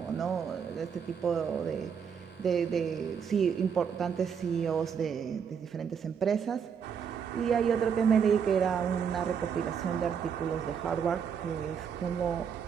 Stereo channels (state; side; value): quieter; left; 7.1 dB